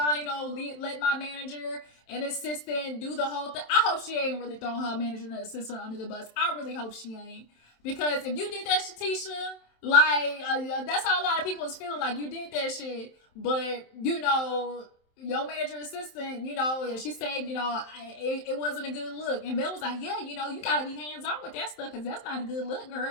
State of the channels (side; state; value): right; late; 27 ms